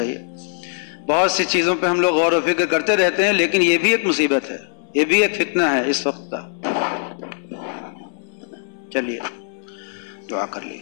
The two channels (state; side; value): silent; right; digital silence